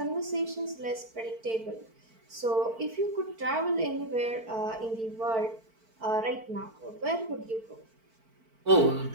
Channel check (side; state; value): left; late; 4.5 ms